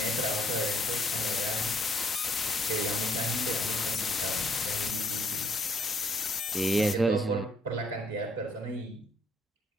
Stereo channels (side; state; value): both; normal; correlation 0.68